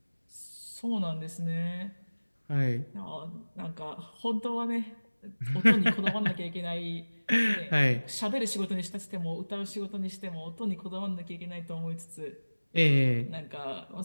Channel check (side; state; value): both; inverted; correlation -1.00